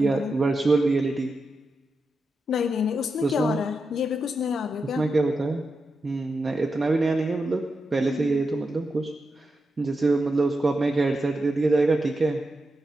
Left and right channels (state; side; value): normal; both; correlation 0.88